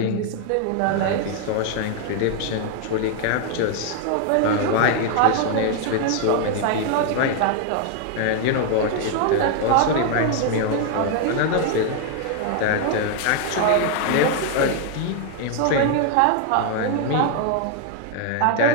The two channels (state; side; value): different; both; correlation 0.00